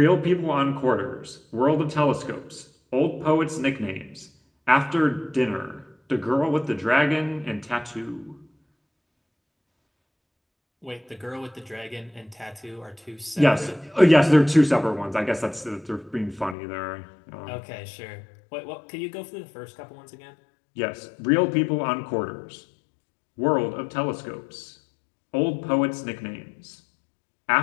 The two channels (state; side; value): drops out; right; at 16.6 s